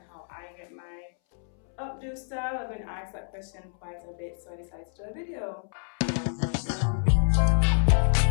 how I get my updo style. I've been asked that question quite a bit, so I decided to do a video.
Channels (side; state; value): right; silent; 59 dB below the other